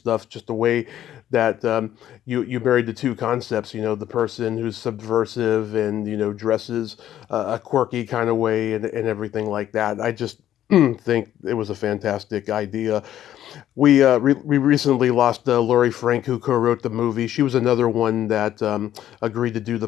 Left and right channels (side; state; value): right; quieter; 11.8 dB